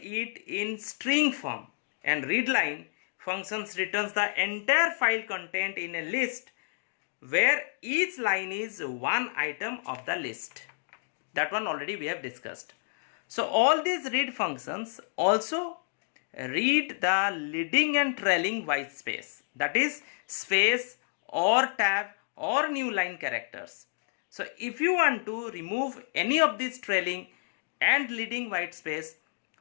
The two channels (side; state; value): right; silent; digital silence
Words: in string form, and readline functions returns the entire file content in a list where each line is one item of the list. That one already we have discussed. So all these read functions also read the leading and trailing white space, that is space or tab or new line characters. So if you want to remove any of these trailing and leading white space,